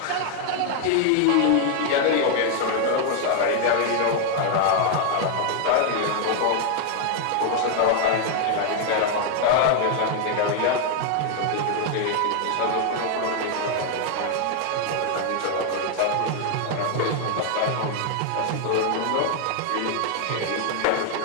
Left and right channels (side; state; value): both; different; correlation 0.00